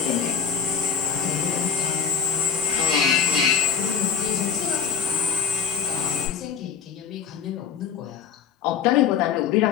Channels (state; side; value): quieter; right; 7.1 dB